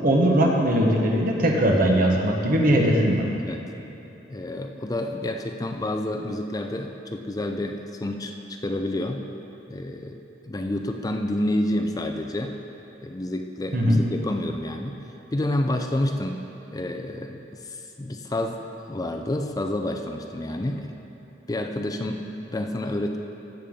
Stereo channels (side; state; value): both; normal; correlation 0.70